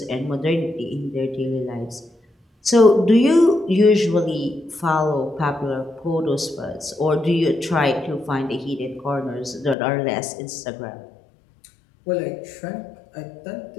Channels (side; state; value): right; drops out; at 9.8 s